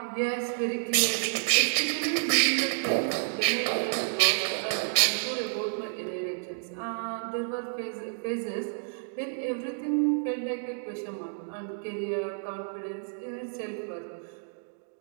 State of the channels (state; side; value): silent; left; digital silence